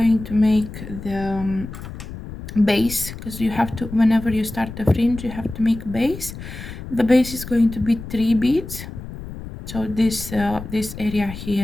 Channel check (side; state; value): left; noise; rumble, 11 dB below the sound